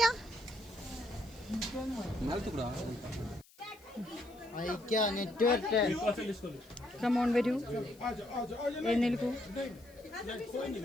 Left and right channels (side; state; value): left; noise; hiss, 27 dB below the sound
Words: കമോൺ വരൂ, എഴുന്നേൽക്കൂ.